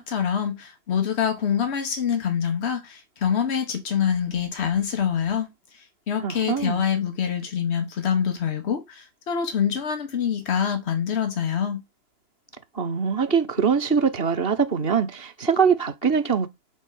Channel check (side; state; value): right; late; 3.1 ms